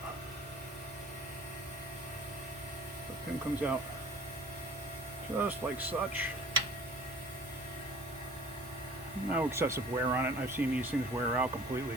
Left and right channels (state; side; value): normal; both; correlation 0.48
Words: The pin comes out just like such. No excessive wear on it. I've seen these things wear out completely